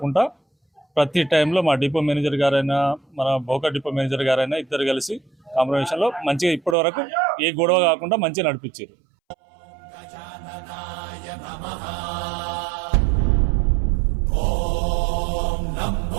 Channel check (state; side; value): drops out; left; at 6.8 s